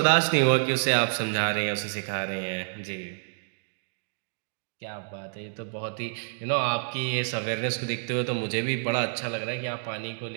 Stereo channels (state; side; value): silent; left; digital silence